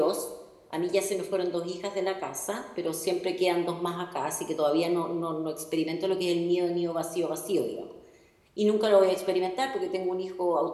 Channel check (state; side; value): identical; both; correlation 1.00